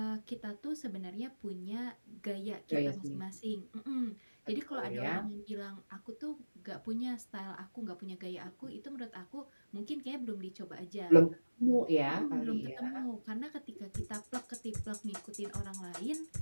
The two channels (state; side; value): inverted; both; correlation -1.00